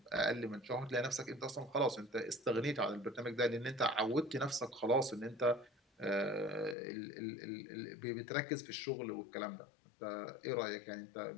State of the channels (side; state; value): right; drops out; at 6.8 s